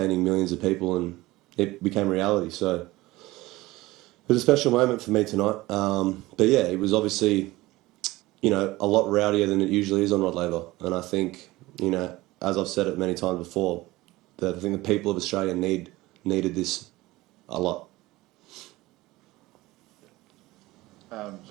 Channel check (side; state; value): left; quieter; 19.2 dB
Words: millions of people, and it became reality. So it was a special moment for me tonight. But yeah, it was obviously, you know, a lot rowdier than it usually is on Rod Laver. And I think, you know, as I've said it many times before, that I think the people of Australia needed this a lot.